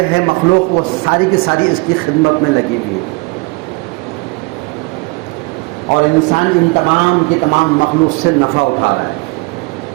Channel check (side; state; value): left; quieter; 27.8 dB